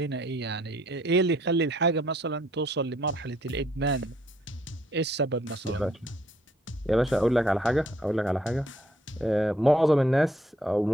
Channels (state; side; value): normal; both; correlation 0.66